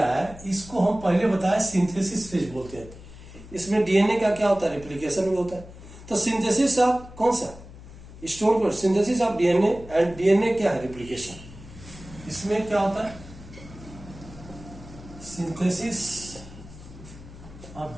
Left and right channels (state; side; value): noise; left; hum, 17 dB below the sound